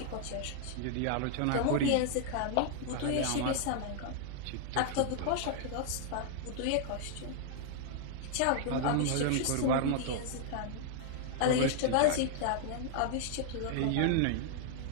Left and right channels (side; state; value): both; different; correlation -0.01